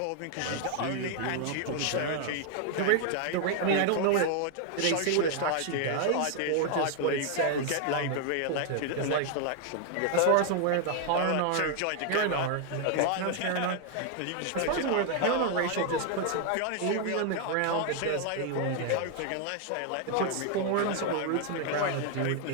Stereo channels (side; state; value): both; different; correlation 0.00